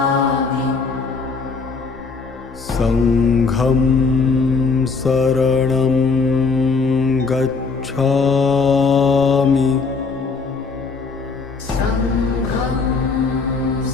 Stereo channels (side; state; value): right; quieter; 4.6 dB